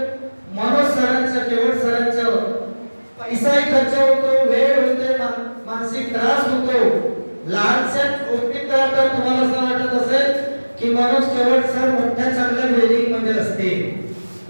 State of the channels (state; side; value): inverted; both; correlation -1.00